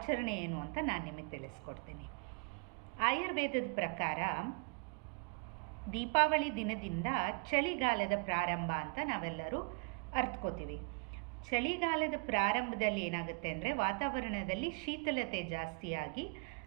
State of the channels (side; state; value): left; quieter; 35.7 dB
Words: ಏನು ಅಂತ ನಾನು ನಿಮಗೆ ತಿಳಿಸ್ಕೊಡ್ತೀನಿ. ಆಯುರ್ವೇದದ ಪ್ರಕಾರ ದೀಪಾವಳಿ ದಿನದಿಂದ ಚಳಿಗಾಲದ ಪ್ರಾರಂಭ ಅಂತ ನಾವೆಲ್ಲರೂ ಅರ್ಥಕೋತೀವಿ. ಚಳಿಗಾಲದ ಪ್ರಾರಂಭದಲ್ಲಿ ಏನಾಗುತ್ತೆ ಅಂದರೆ ವಾತಾವರಣದಲ್ಲಿ ಶೀತಲತೆ ಜಾಸ್ತಿಯಾಗಿ